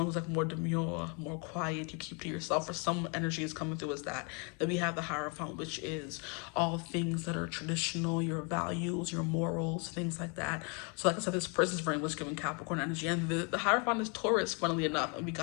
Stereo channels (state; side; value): quieter; right; 35.4 dB